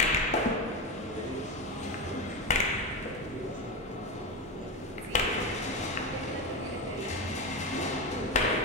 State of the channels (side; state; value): both; normal; correlation 0.16